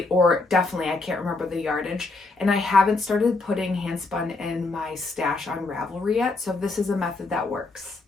or definitely I can't remember the yardage, and I haven't started putting hand spun in my stash on Ravelry yet, so this is a method that works.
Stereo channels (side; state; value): right; quieter; 3.4 dB